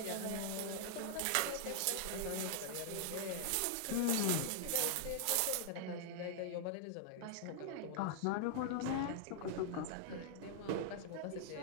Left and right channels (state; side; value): different; both; correlation -0.01